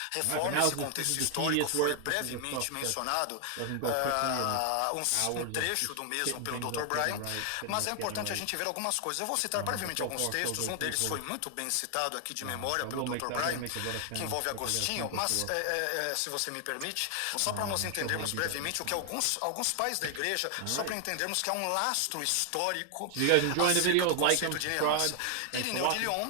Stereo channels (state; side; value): different; both; correlation 0.00